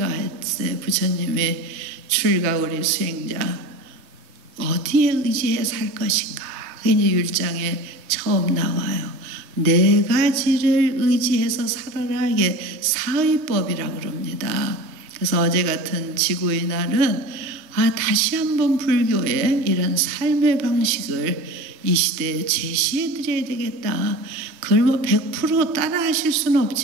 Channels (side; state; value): left; late; 3.1 ms